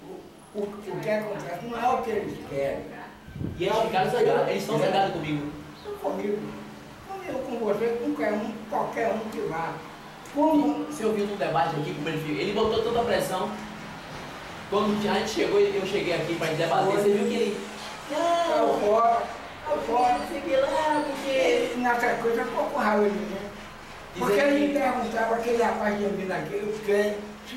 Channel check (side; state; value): both; identical; correlation 1.00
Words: O que acontece não é o que eles querem. E eles ficaram zangados, eles estão zangados comigo. Comigo, com você, com qualquer um que vá. Você ouviu no debate aqui como ele fez? Ele botou toda a pressão. Quando a gente chegou, eu cheguei aqui para debater, você viu que ele... Não, fora, não sei o que lá, porque... Nessa coisa ficou com raiva de mim. Porque ele me perguntava, aquele rapaz de mim aqui, eu quero,